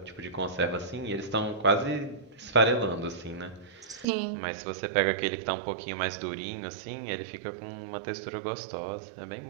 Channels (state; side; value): drops out; left; at 4.0 s